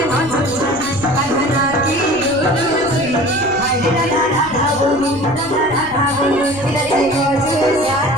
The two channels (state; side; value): noise; left; rumble, 18 dB below the sound